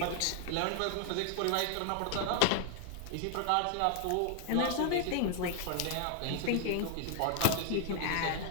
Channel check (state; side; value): different; both; correlation 0.00